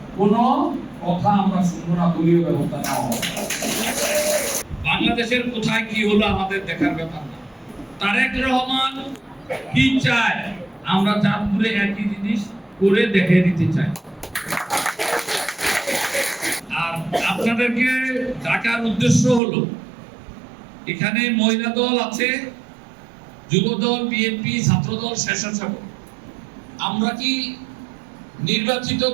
কোনো কথা আমরা শুনবো না, দলীয় ব্যবস্থা নেওয়া হবে। বাংলাদেশের কোথায় কি হলো আমাদের দেখার ব্যাপার না। তারেক রহমান কি চায়, আমরা চাঁদপুরে একই জিনিস করে দেখে দিতে চাই। আর আপনাদেরকে ডাকার উদ্দেশ্য হলো, এখানে মহিলা দল আছে, যুব দল, বিএনপি, ছাত্র দল, স্বেচ্ছাসেবক। আমরা কি নির্বাচিত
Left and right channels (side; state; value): left; drops out; at 19.4 s